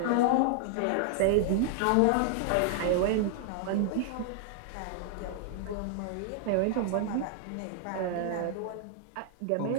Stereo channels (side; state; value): both; different; correlation -0.01